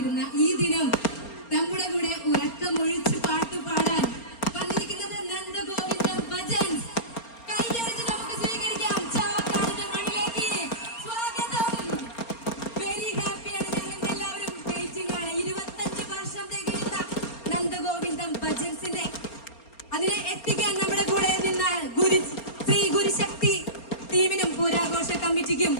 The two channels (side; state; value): right; late; 4.3 ms